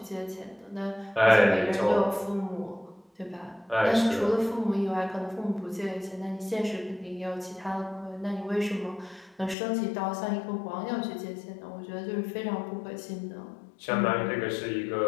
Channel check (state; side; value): drops out; right; at 9.6 s